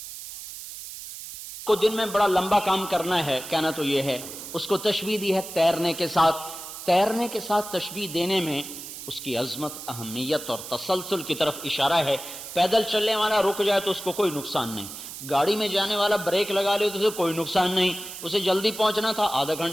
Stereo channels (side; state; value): right; noise; hiss, 11 dB below the sound